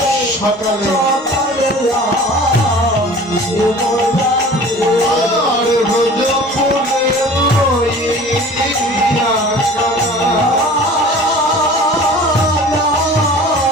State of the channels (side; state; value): both; normal; correlation 0.43